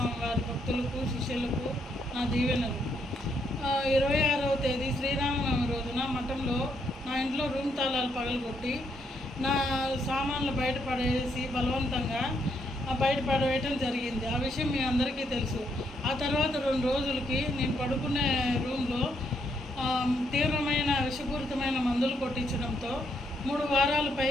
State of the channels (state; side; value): normal; both; correlation 0.75